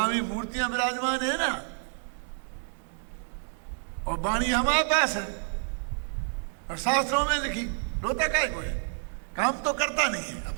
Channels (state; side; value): silent; left; digital silence